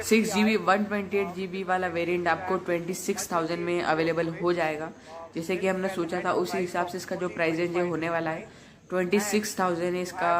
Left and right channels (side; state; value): both; identical; correlation 1.00